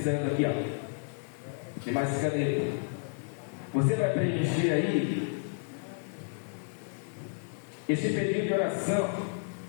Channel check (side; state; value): right; silent; digital silence